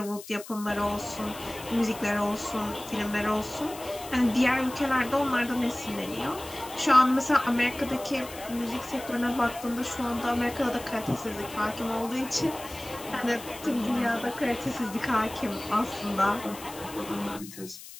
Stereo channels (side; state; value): left; noise; hiss, 15 dB below the sound